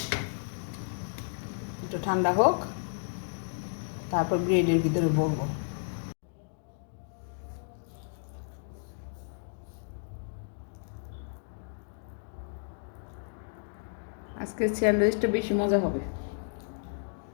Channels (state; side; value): silent; right; digital silence